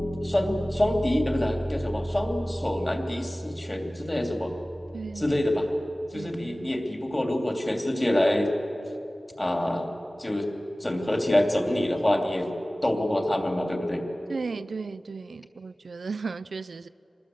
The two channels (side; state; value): both; normal; correlation 0.97